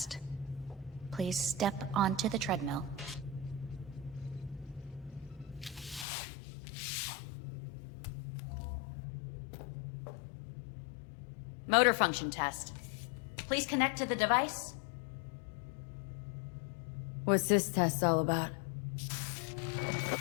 Please step onto the treadmill. Motor function test. Please connect to the device. What's this test all about?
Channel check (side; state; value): right; drops out; at 6.1 s